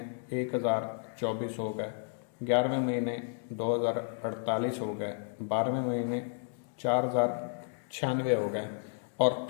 1024 हो गए, 11वें महीने 2048 हो गए, 12वें महीने 4096 हो गए, और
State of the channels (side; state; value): right; silent; 56 dB below the other